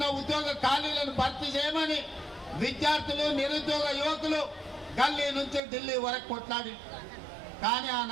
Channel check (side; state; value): left; drops out; at 5.6 s